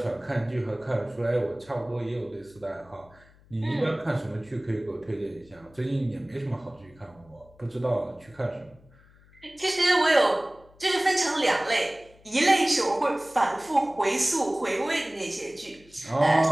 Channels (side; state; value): left; noise; hum, 27 dB below the sound